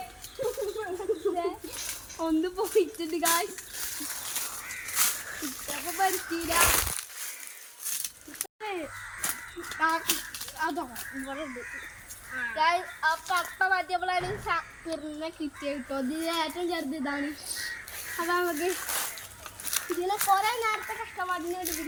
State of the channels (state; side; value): identical; both; correlation 1.00